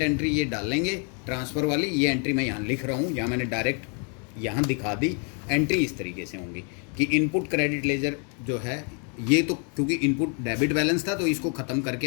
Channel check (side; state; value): right; quieter; 39.5 dB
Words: एंट्री ये डालेंगे ट्रांसफ़र वाली, ये एंट्री मैं यहाँ लिख रहा हूँ, यहाँ मैंने डायरेक्ट यहाँ दिखा दी। एंट्री इस तरीके से होंगी कि इनपुट क्रेडिट लेजर जो है ये, तो क्योंकि इनपुट डेबिट बैलेंस था तो इसको ख़त्म करके